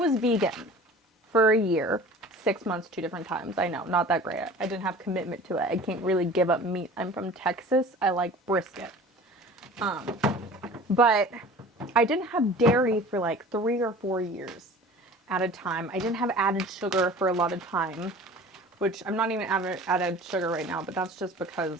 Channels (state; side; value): normal; both; correlation 0.43